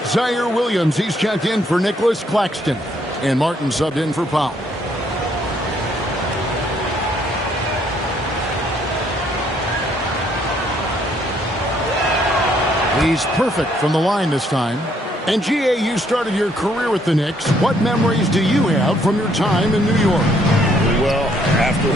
Zaire Williams. He's checked in for Nicholas Claxton. And Martin subbed in for Powell. He's perfect from the line this time. And GA, you started your career with the Knicks. What memories do you have from your time in New York? Well, after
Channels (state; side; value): normal; both; correlation 0.68